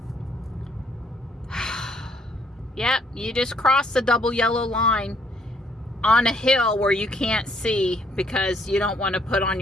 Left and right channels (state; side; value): normal; both; correlation 0.67